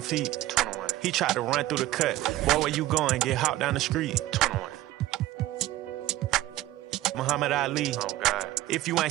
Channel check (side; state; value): left; quieter; 15.6 dB